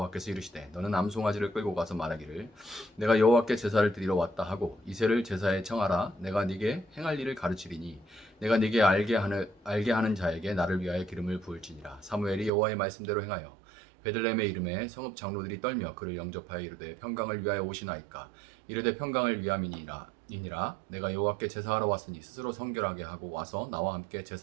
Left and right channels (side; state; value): left; drops out; at 12.5 s